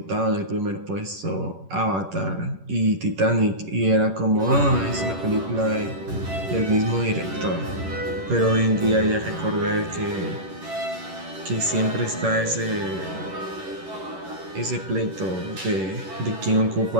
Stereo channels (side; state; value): left; late; 11 ms